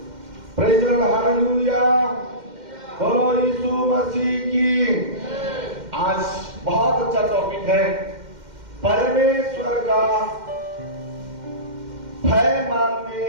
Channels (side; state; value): left; late; 2.1 ms